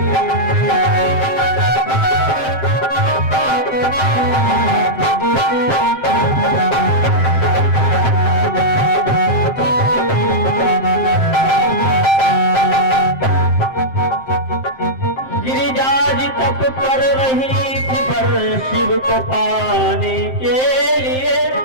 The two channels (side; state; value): right; late; 7.6 ms